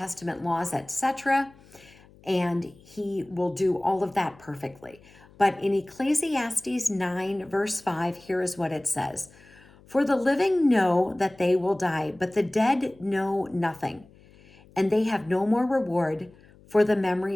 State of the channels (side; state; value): left; noise; hum, 26 dB below the sound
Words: laws, etc. And he will do all of that perfectly. But in Ecclesiastes 9, verse 5, here is what it says. For the living know that they will die, but the dead know nothing, and they have no more reward, for the